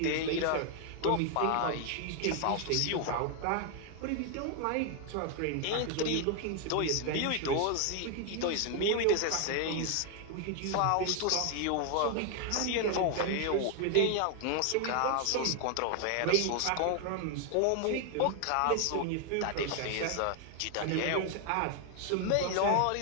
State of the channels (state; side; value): different; both; correlation 0.00